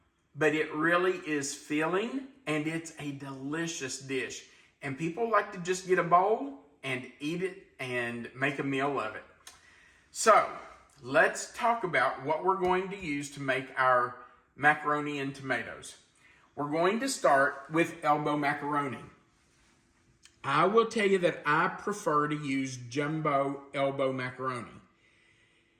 but it really is filling and it's a delicious dish. And people like to just get a bowl and eat it and make a meal of it. So, let's talk about what we're going to use to make our macaroni and tomatoes. We're going to start with elbow macaroni. I will tell you that I prefer to use jumbo elbow macaroni.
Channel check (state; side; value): identical; both; correlation 1.00